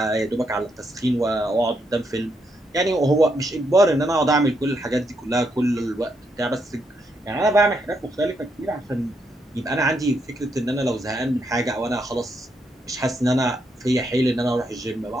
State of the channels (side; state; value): both; normal; correlation 0.78